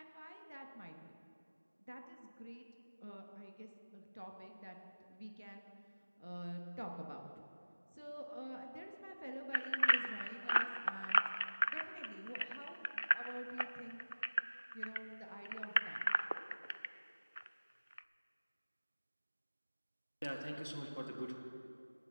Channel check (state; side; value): inverted; both; correlation -1.00